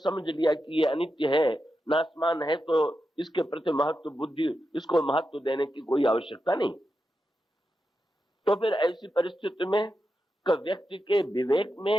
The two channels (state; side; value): normal; both; correlation 0.88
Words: लिया कि ये अनित्य है, नाशमान है, तो इसके प्रति महत्व बुद्धि, इसको महत्व देने की कोई आवश्यकता नहीं। तो फिर ऐसी परिस्थिति में व्यक्ति के विवेक